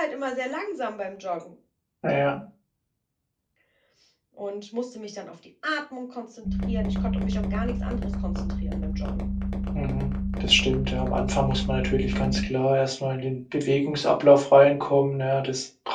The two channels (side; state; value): both; identical; correlation 1.00